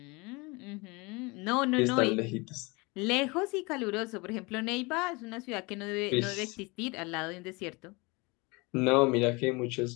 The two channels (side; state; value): right; quieter; 26.4 dB